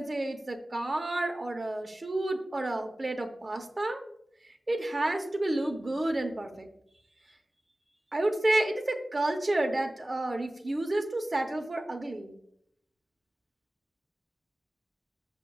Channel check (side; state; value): both; normal; correlation 0.97